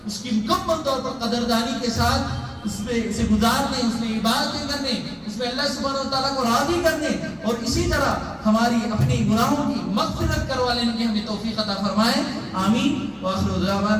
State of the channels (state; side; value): identical; both; correlation 1.00